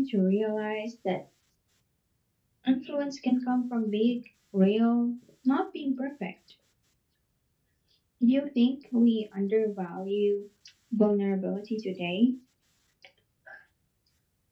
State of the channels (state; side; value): identical; both; correlation 1.00